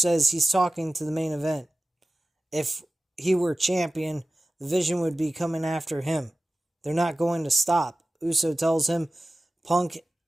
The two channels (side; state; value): both; normal; correlation 0.96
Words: he's talking to the main event. If he were champion, the Vision would be coming after him. They're not going to stop. Uso tells Punk